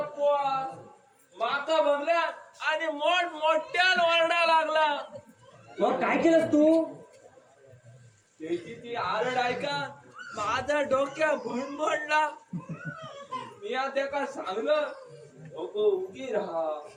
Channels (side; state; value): both; identical; correlation 1.00